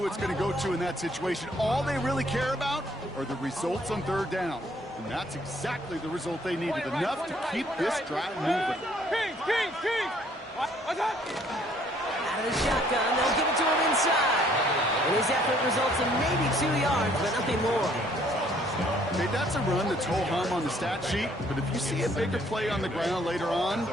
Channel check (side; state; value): both; normal; correlation 0.62